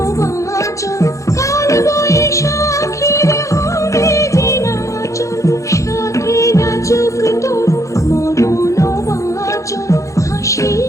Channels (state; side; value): late; right; 0.15 ms